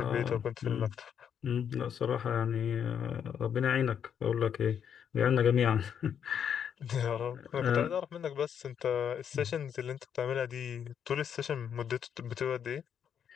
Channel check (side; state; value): right; quieter; 8.3 dB